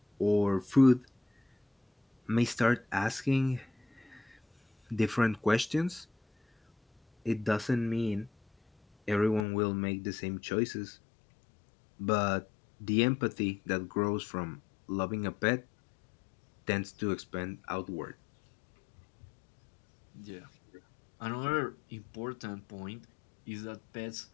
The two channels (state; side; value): drops out; right; at 9.5 s